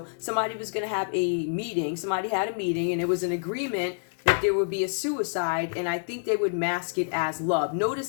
somebody was going to have a meeting. Somebody had a meeting and it was an agreement that there would be a suicide. And I think they would mask it as love.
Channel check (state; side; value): silent; right; digital silence